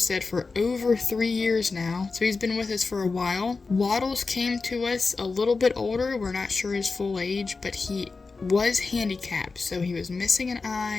for over 3 years now, so he's been with us for a while. Waddles came to us a little bit older. We're not sure his full age, but he was handicapped, so he was missing an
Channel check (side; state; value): right; quieter; 4.2 dB